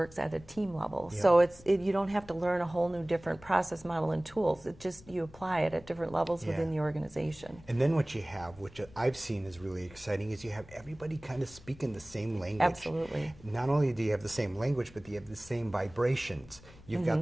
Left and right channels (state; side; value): noise; left; rumble, 21 dB below the sound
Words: at a team level. Yeah. So you don't have to learn a whole new different process model and tools. It just, you apply it at different levels within the organization. And then what you have, which I've seen is really exciting, is you have everybody kind of speaking the same language. Absolutely. Not only do you have the same language, but you have the same vibrations. You've